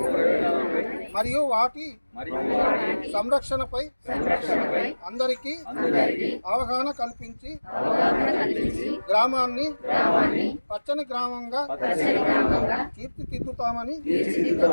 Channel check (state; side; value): inverted; both; correlation -1.00